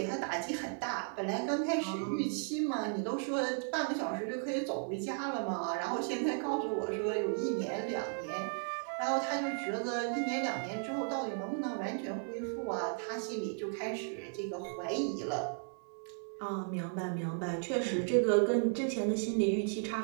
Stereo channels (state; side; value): silent; left; 54 dB below the other